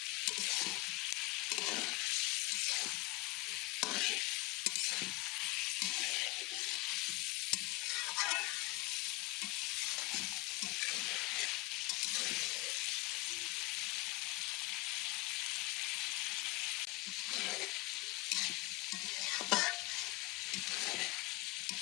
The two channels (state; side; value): quieter; right; 22.0 dB